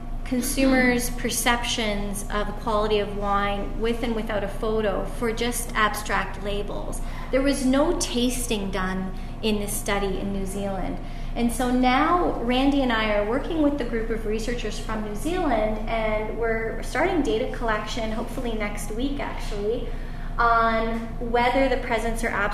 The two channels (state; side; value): identical; both; correlation 1.00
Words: consumers' perceptions of the quality of wine with and without a photo for just abstract labels. There was no tasting done in this study in New Zealand. And so now Randy and I are working with the group of researchers from New Zealand, and we're starting data collection, hopefully next week actually, on whether the presence or